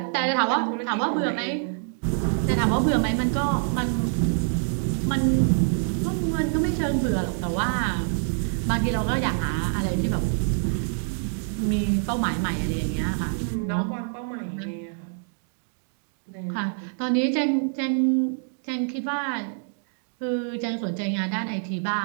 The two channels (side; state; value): left; silent; digital silence